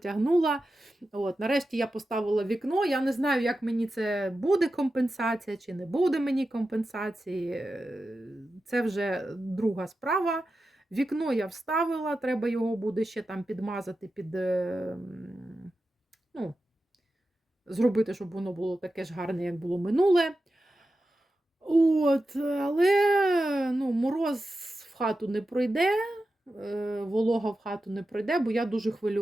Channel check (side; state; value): both; normal; correlation 0.92